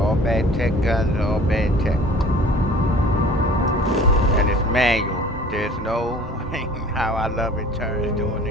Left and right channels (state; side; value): normal; both; correlation 0.47